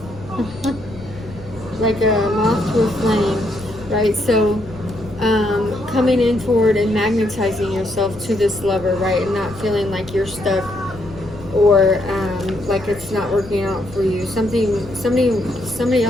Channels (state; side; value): noise; left; rumble, 17 dB below the sound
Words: like a moth to a flame, right? So coming in forward and magnetizing yourself to this lover, right? And not feeling like you're stuck, or like it's not working out for you. Somebody